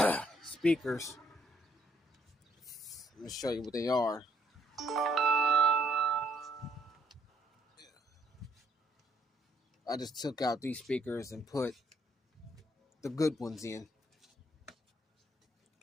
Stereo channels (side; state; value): both; normal; correlation 0.69